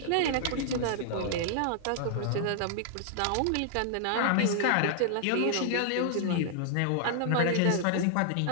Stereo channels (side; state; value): both; different; correlation -0.01